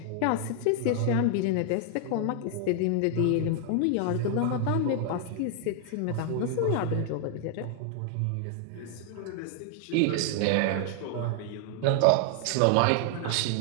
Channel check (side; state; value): both; different; correlation 0.00